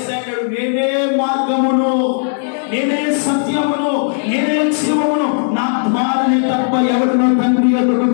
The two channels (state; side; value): silent; right; digital silence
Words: నేనే మార్గమును, నేనే సత్యమును, నేనే జీవమును, నా ద్వారానే తప్ప ఎవరినో తండ్రి ఎదుగు